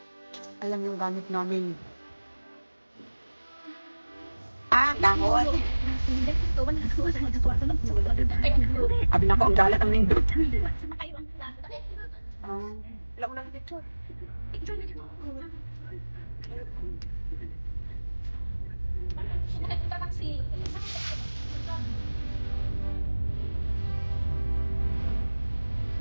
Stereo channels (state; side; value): inverted; both; correlation -1.00